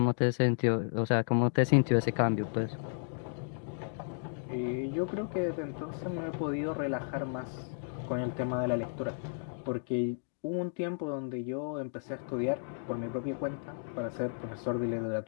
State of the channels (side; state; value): right; silent; digital silence